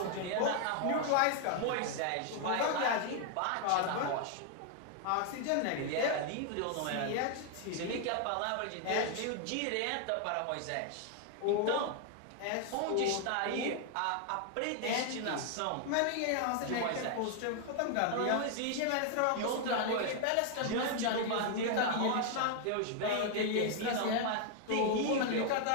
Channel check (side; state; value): both; different; correlation 0.00